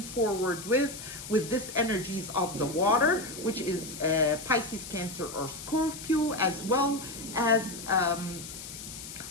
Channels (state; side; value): noise; left; hiss, 11 dB below the sound